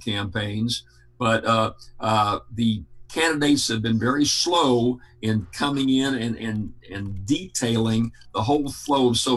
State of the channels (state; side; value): identical; both; correlation 1.00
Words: but the candidates have been very slow in coming in and detailing the whole flow of